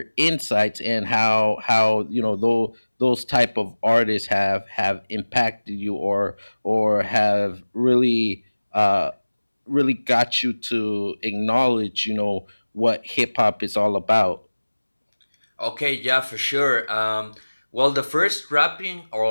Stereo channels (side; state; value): both; inverted; correlation -1.00